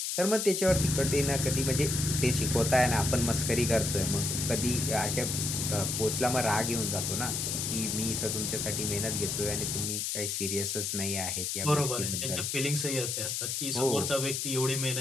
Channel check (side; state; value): left; noise; hiss, 1 dB below the sound